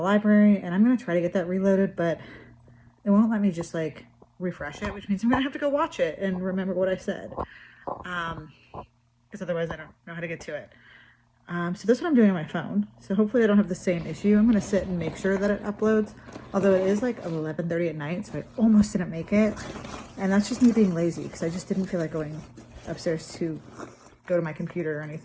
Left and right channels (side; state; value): both; identical; correlation 1.00